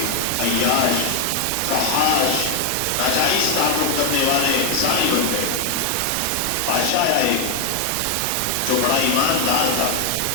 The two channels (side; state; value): both; different; correlation 0.01